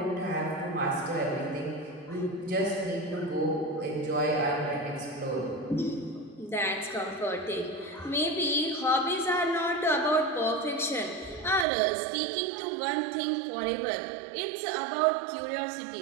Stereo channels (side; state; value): left; drops out; at 11.7 s